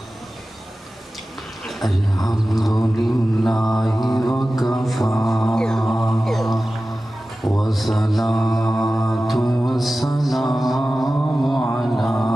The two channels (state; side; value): normal; both; correlation 0.95